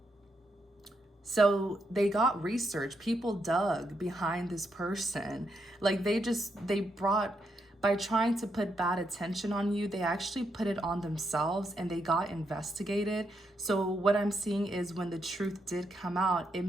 So they got research. People dug behind this person. Like they brought, by trying to put bad attention on you, they actually put it on themselves, and they got investigated. So what I'm seeing is, when the truth did come out, it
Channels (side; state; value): both; normal; correlation 0.80